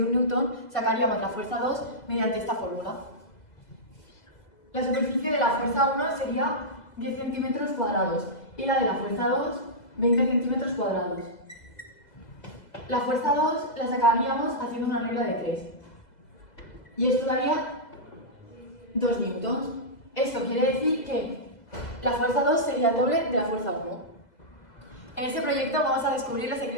1 newton, sacaríamos la fuerza 2 mediante esta fórmula. La superficie de la fuerza 1 sería 10 centímetros cuadrados y la de la fuerza 2, 20 centímetros cuadrados. La fuerza 2 la sacaríamos haciendo una regla de 3. Y esto daría 2 newtons. Esto quiere decir que la fuerza 2 sería el doble de la fuerza 1. En este proyecto vamos a descubrir los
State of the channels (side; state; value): right; late; 2.0 ms